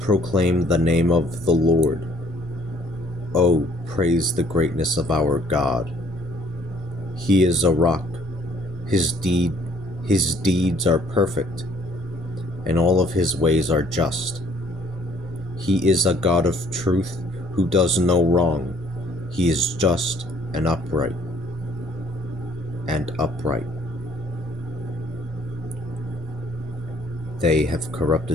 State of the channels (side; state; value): both; normal; correlation 0.60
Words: the name of the Lord. Oh, praise the greatness of our God. He is a rock. His deeds are perfect, and all of his ways are just. He is a God of truth who does no wrong. He is just and upright. They have